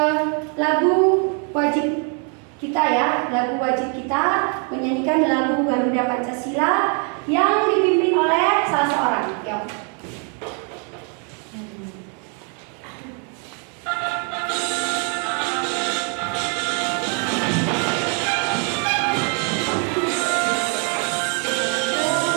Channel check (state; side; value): quieter; left; 39.0 dB